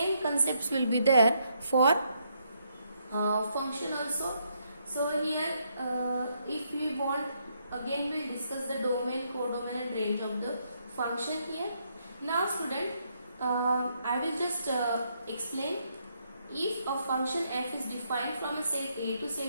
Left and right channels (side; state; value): both; inverted; correlation -0.75